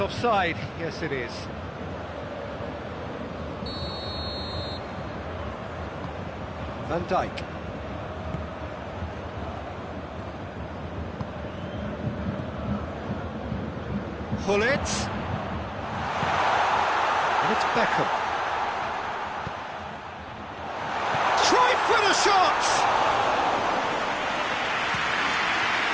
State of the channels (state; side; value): identical; both; correlation 1.00